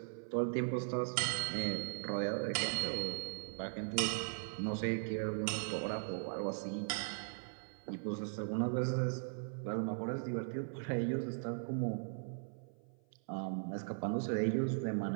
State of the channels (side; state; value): left; silent; 52 dB below the other